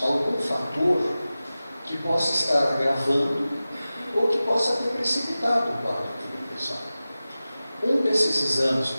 algum fator que possa estar agravando ou que possa ter precipitado o quadro de depressão. Um desses exames,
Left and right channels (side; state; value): both; inverted; correlation -0.96